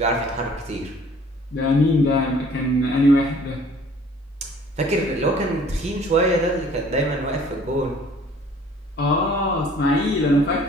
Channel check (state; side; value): normal; both; correlation 0.54